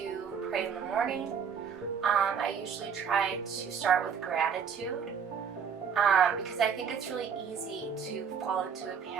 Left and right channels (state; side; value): quieter; left; 6.9 dB